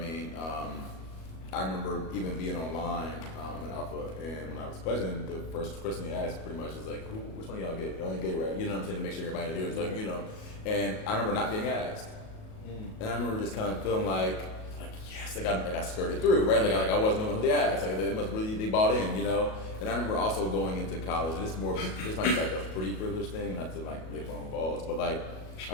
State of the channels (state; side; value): late; right; 37 ms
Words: I remember even being online in Alpha, and when I was pledging, the first question they asked pretty much was like, which one of y'all gay? Y'all ain't gay, right? You know what I'm saying? To make sure everybody hears, like, you know. And I remember not being asked. And I remember just kind of feeling like yes, I skirted through, right? Like I wasn't the one who they asked. Like they bought in, you know. And I remember also going into college, and this might be like a pretty privileged thing, not to like lick my own balls, but like I